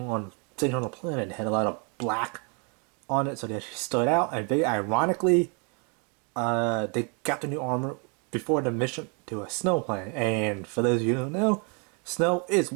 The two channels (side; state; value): left; quieter; 35.8 dB